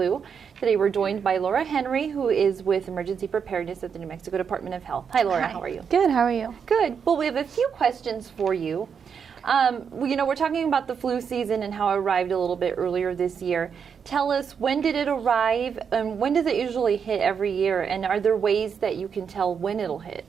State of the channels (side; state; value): left; quieter; 6.8 dB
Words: Today we're joined by Laura Henry, who is with Emergency Preparedness at the New Mexico Department of Health. Hi, Laura. Hi. How are you? Good. How are you? Good. Well, we have a few questions for you. We're talking about the flu season and how it arrived a little bit earlier this year. Tell us, when did it arrive, and when does it usually hit every year, and are there ways that you can tell when it'll hit?